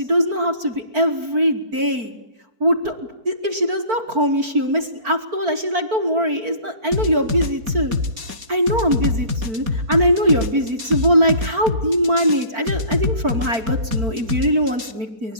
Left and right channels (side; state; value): left; late; 4.5 ms